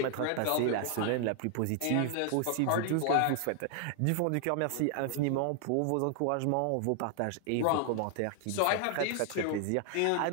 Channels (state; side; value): different; both; correlation 0.00